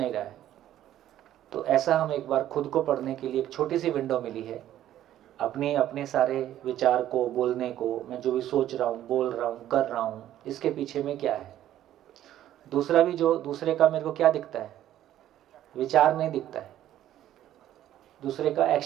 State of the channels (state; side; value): quieter; left; 12.3 dB